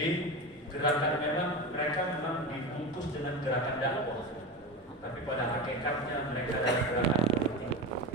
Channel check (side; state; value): both; normal; correlation 0.23